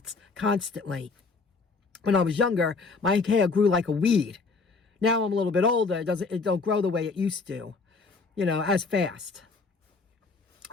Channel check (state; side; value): quieter; right; 4.3 dB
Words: constantly. When I was younger, my hair grew like a weed. Now I'm a little bit older. It don't grow the way it used to, as fast.